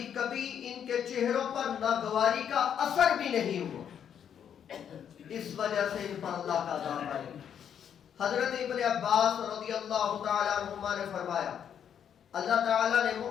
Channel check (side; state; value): right; quieter; 8.6 dB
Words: کبھی ان کے چہروں پر ناگواری کا اثر بھی نہیں ہوا، اس وجہ سے ان پر اللہ کا عذاب آئے۔ حضرت ابن عباس رضی اللہ تعالی عنہما نے فرمایا اللہ تعالیٰ نے